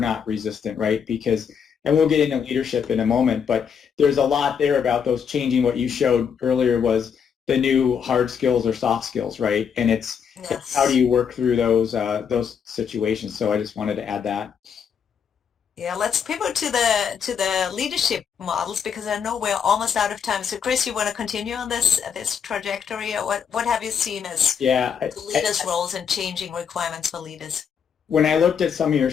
resistant, right? Because, and we'll get into leadership in a moment, but there's a lot there about those changing. What you showed earlier was the new hard skills or soft skills, right? And it's how do Yes. you work through those situations? So I just wanted to add that. Yeah, let's pivot to the leadership models because I know we're almost out of time. So Chris, you want to continue on this trajectory, or what have you seen as Yeah, the leaders' roles and changing requirements for leaders? when I looked at some of your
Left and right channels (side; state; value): right; quieter; 7.2 dB